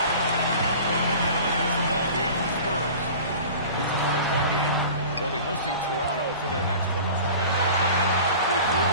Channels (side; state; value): both; inverted; correlation -0.40